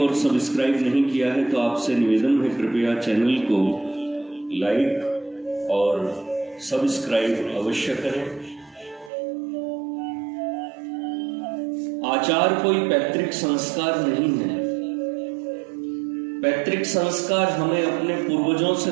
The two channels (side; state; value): left; drops out; at 9.1 s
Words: सब्सक्राइब नहीं किया है तो आपसे निवेदन है, कृपया चैनल को लाइक और सब्सक्राइब अवश्य करें। आचार कोई पैतृक संस्कार नहीं है। पैतृक संस्कार हमें अपने पूर्वजों से